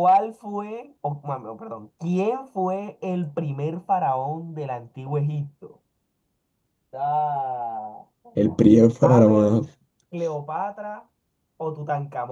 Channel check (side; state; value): both; identical; correlation 1.00